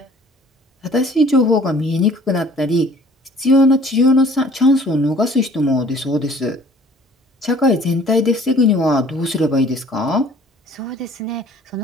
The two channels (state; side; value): normal; both; correlation 0.54